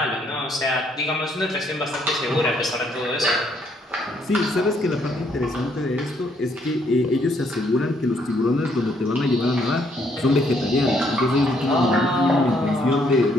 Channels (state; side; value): normal; both; correlation 0.70